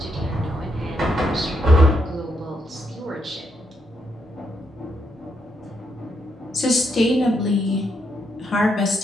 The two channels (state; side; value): normal; both; correlation 0.79